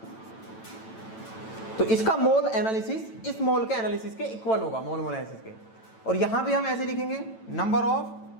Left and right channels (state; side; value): late; right; 9.0 ms